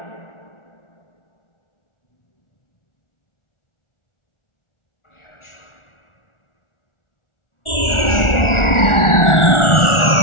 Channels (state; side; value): late; right; 1.4 ms